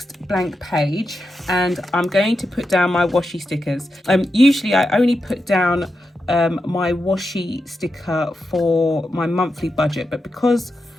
blank page and I'm going to put down my washi stickers. Usually I only put down my washi sticker for my monthly budget, but because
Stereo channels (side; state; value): both; normal; correlation 0.88